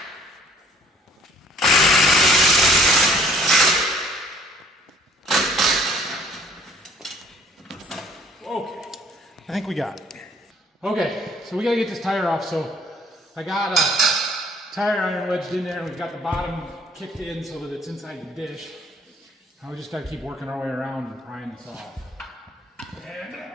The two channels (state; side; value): normal; both; correlation 0.56